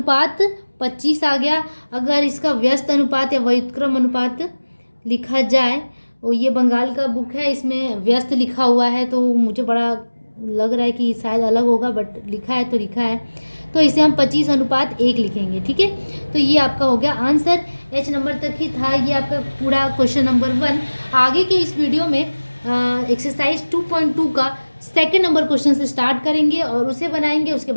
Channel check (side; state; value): both; inverted; correlation -1.00